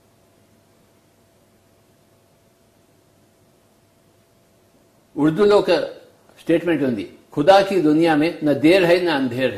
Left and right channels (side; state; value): both; identical; correlation 1.00